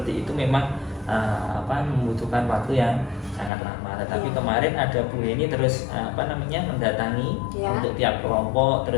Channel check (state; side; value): drops out; right; at 3.5 s